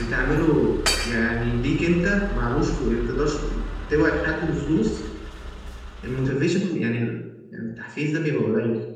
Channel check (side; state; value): both; identical; correlation 1.00